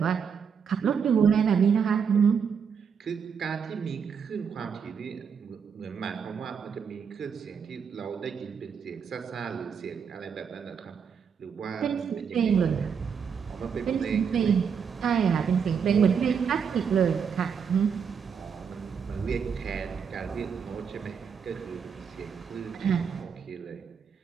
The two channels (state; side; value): quieter; left; 6.7 dB